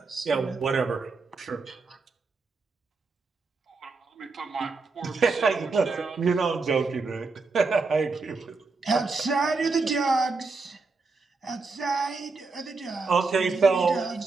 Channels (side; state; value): left; quieter; 4.0 dB